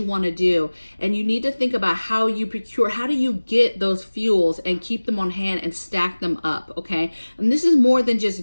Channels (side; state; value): both; inverted; correlation -1.00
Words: want to do. And you need to think about how you procure, how do you get those fuels and keep them on hand and stack them up, okay? And this is more than